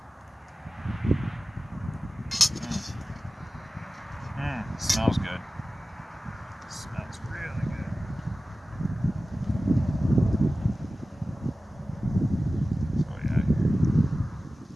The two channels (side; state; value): both; normal; correlation 0.96